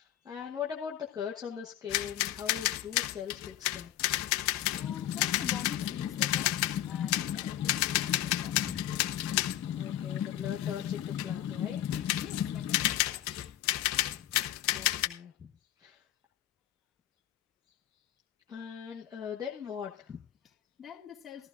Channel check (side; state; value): right; quieter; 12.7 dB